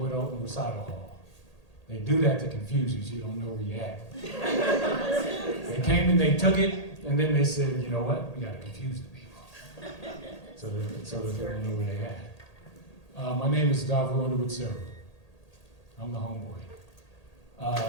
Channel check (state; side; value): late; right; 1.8 ms